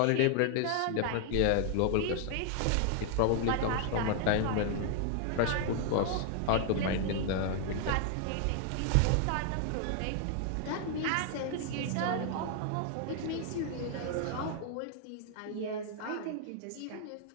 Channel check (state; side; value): different; both; correlation 0.00